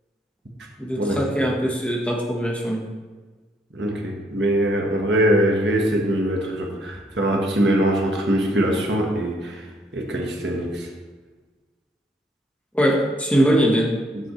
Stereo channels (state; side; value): normal; both; correlation 0.69